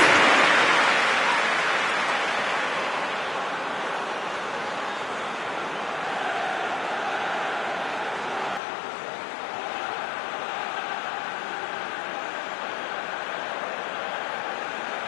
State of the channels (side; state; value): right; drops out; at 8.6 s